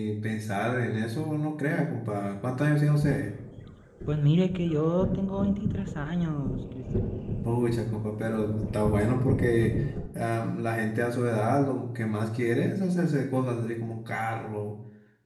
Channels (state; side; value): identical; both; correlation 1.00